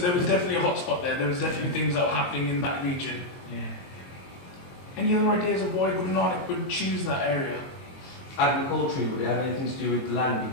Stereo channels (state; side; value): late; right; 23 ms